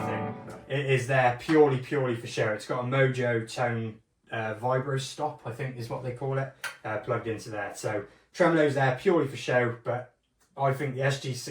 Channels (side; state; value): both; identical; correlation 1.00